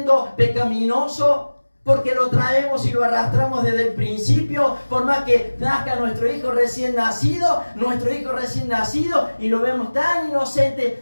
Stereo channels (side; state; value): both; inverted; correlation -1.00